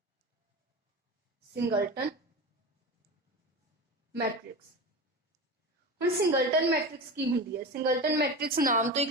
Singleton matrix. हुण सिंगलटन मैट्रिक्स की हुंदी है? सिंगलटन मैट्रिक्स नाम तो ही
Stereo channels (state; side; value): normal; both; correlation 0.26